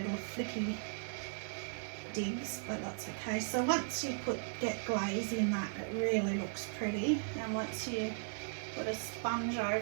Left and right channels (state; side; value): silent; left; 53 dB below the other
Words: flicky digs, but that's okay. So once you get glaze in that, it really looks pretty. And once you put a sponge